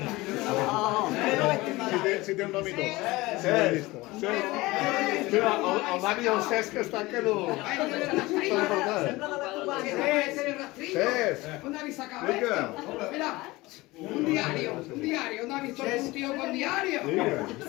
Si té un nom i tot. Cesc. El Dani i el Cesc estan que no... Cesc. ¿Dónde habéis sacado esto? Mira, un diario. ¿Dónde habéis visto un tío con diario?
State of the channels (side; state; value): right; quieter; 20.6 dB